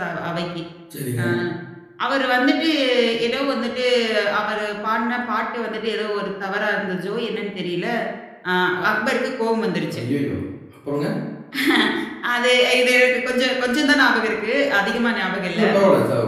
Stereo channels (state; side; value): identical; both; correlation 1.00